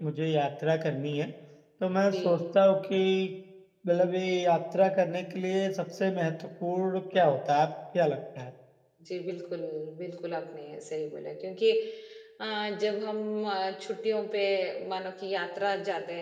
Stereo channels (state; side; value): identical; both; correlation 1.00